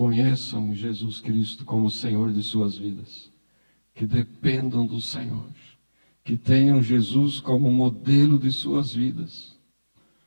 Jesus Cristo como Senhor de suas vidas, que dependam do Senhor, que tenham Jesus como modelo de suas vidas,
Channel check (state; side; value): inverted; both; correlation -1.00